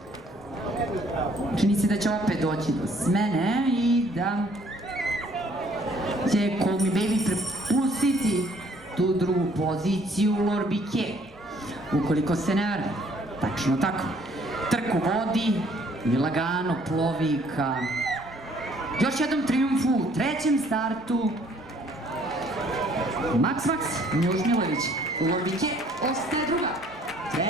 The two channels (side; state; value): both; normal; correlation 0.61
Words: čini se da će opet doći do smene i da će Call Me Baby prepustiti tu drugu poziciju Lorbike, ukoliko se ne varam. Tačno tako. Trku vodi i lagano plovi ka još jednom trijumfu u trećem startu. Max, Miloš Milović. Lorbike ostaje druga.